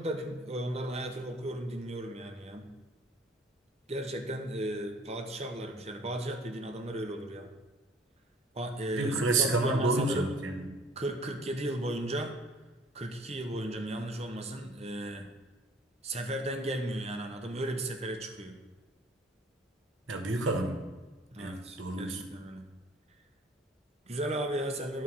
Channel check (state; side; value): normal; both; correlation 0.53